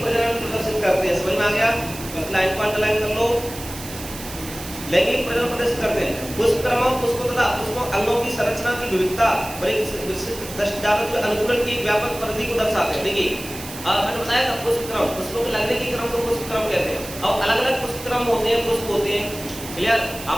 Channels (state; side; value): noise; right; hiss, 12 dB below the sound